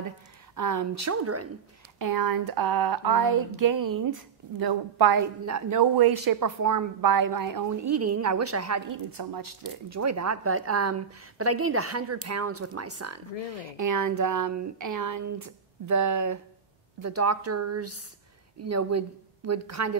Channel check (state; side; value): quieter; left; 6.7 dB